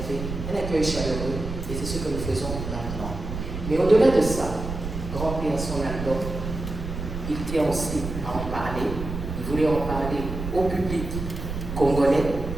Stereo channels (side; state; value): right; noise; rumble, 6 dB below the sound